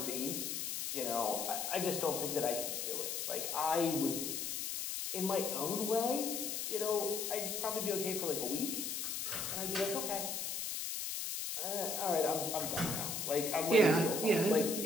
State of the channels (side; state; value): left; noise; hiss, 3 dB below the sound